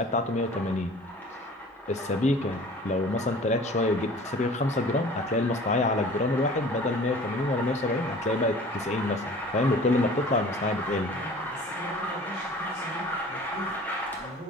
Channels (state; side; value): normal; both; correlation 0.45